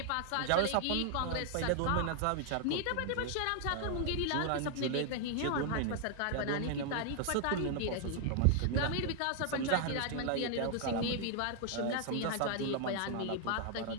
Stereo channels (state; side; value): different; both; correlation 0.00